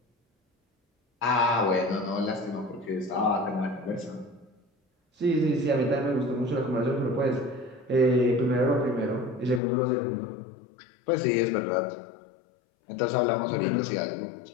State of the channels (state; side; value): drops out; right; at 9.6 s